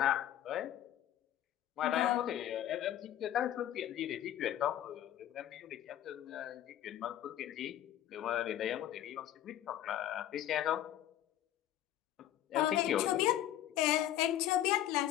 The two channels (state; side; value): quieter; right; 12.3 dB